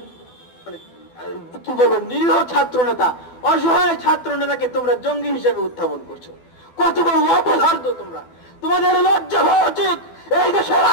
কি বলবো নিরীহ ছাত্র নেতা, অসহায় ছাত্র নেতাকে তোমরা জঙ্গি হিসেবে উত্থাপন করছো। কত বড় অপদার্থ তোমরা! তোমাদের লজ্জা হওয়া উচিত। এই দেশের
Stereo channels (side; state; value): right; late; 12 ms